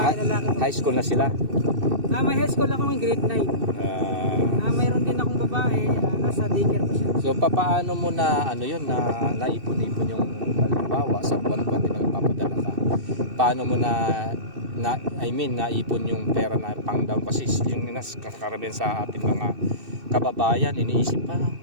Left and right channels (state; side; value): late; left; 2.6 ms